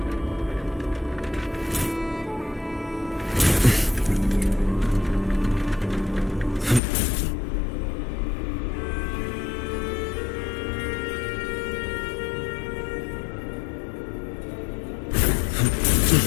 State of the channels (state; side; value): drops out; right; at 6.8 s